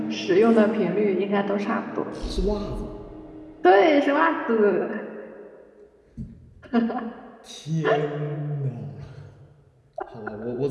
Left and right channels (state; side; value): identical; both; correlation 1.00